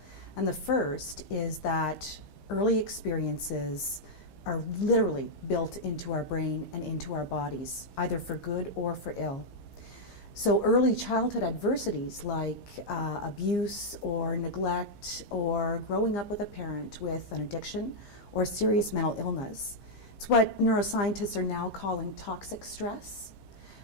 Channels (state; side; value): late; right; 15 ms